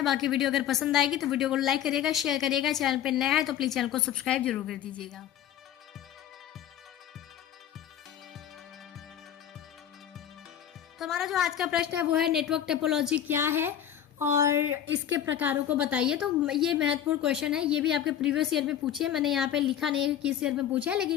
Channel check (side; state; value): right; quieter; 10.2 dB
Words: बाकी वीडियो अगर पसंद आएगी तो वीडियो को लाइक करिएगा, शेयर करिएगा। चैनल पर नया है तो प्लीज़ चैनल को सब्सक्राइब जरूर कर दीजिएगा। तो हमारा जो आज का प्रश्न है वो है नेटवर्क टोपोलॉजी क्या है और इसके प्रकारों को बताइए। तो ये महत्वपूर्ण क्वेश्चन है, ये भी आपके प्रीवियस ईयर में पूछे है। मैंने यहाँ पे लिखा नहीं है किस ईयर में पूछा है,